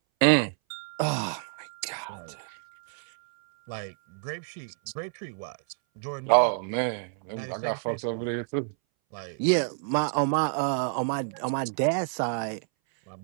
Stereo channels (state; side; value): silent; left; 59 dB below the other